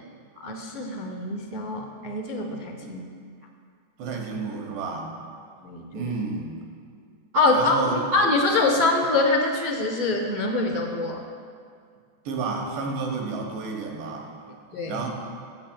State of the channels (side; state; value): left; late; 13 ms